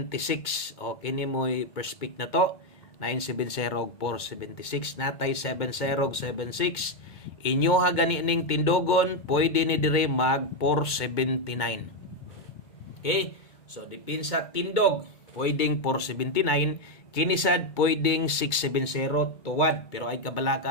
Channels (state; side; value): late; right; 2.2 ms